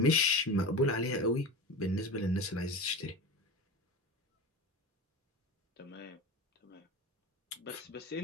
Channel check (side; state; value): both; normal; correlation 0.28